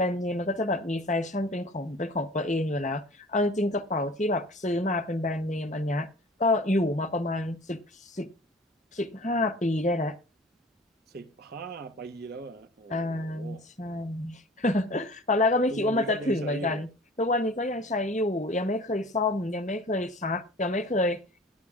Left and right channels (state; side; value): normal; both; correlation 0.44